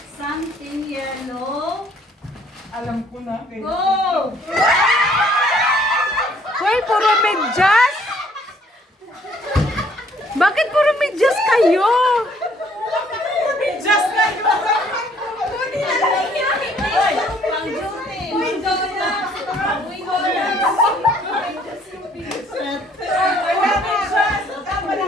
Something yellow. Alam ko na. Go! Hoy, puro medyas! Bakit puro medyas kayo? Just like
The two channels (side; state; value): both; normal; correlation 0.62